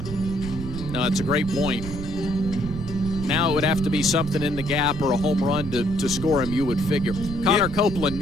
No, it's a great point. Now it would have to be something in the gap or a home run to score him, you would figure. Connor Copeland,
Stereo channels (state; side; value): noise; right; rumble, 8 dB below the sound